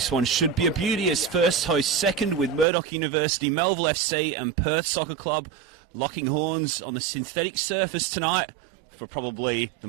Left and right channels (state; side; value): drops out; left; at 2.7 s